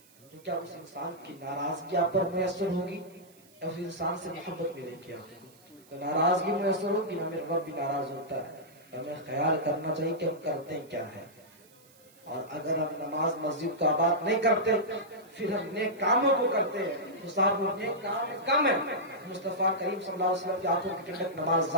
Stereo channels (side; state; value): right; noise; hiss, 27 dB below the sound